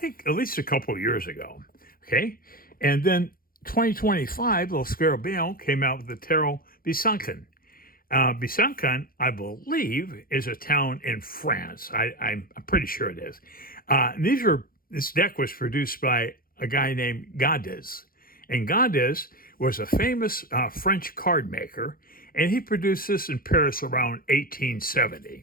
at least a couple years ago. Okay, and then 2025, Lo Scarabeo came out with the Tarot Besancon. Besancon, I believe, is a town in France. I'm pretty sure it is. This deck was produced by a guy named Gaudais. And Gaudais was a famous French card maker, and he produced this in Paris around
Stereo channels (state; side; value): late; right; 0.42 ms